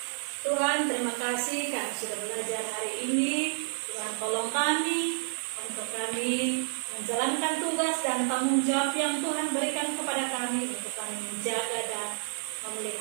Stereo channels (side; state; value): left; silent; digital silence